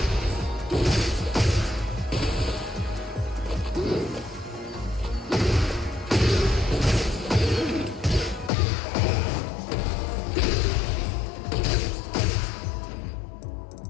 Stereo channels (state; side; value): drops out; right; at 8.5 s